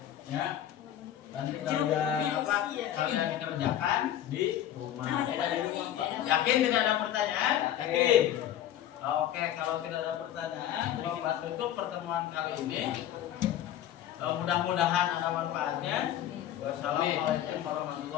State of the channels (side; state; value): right; quieter; 11.4 dB